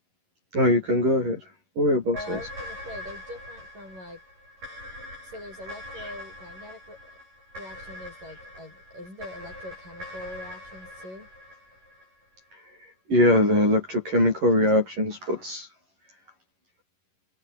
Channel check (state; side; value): late; left; 11 ms